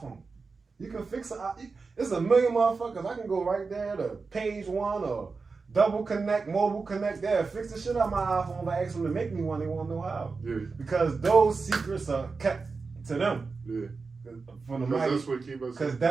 You can fix it. It's a million motherfuckers. I can go right there to page 1 or double connect, mobile connect there, fix the shit out my iPhone. If I ask them to make me one, they won't know how. Yeah. Because those secrets are kept to them. Yeah. From the Because that's what keep us. Because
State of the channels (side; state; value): left; quieter; 4.4 dB